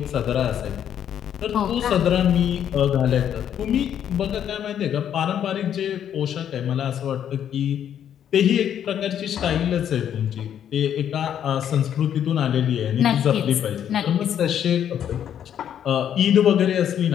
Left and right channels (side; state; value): right; quieter; 9.6 dB